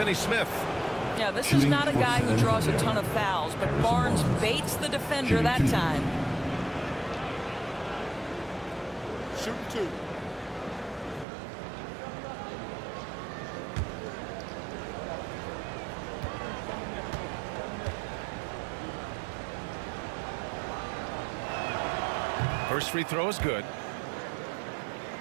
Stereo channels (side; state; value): left; drops out; at 11.2 s